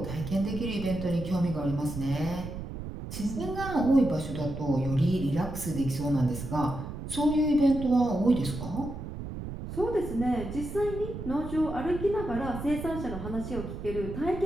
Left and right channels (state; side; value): noise; right; rumble, 8 dB below the sound